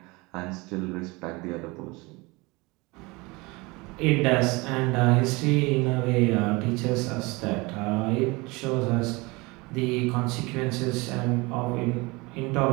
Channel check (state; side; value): quieter; left; 24.6 dB